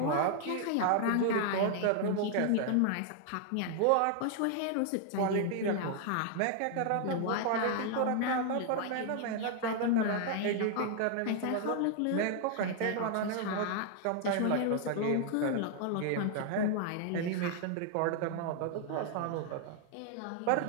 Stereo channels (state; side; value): different; both; correlation 0.00